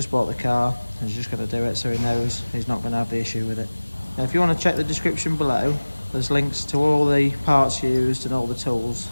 bought the car and he's just going to do it so he knows he's not going to have the issue with it. Now, if you want to check the description below, there's links to all the parts used and all the tools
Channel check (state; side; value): inverted; both; correlation -1.00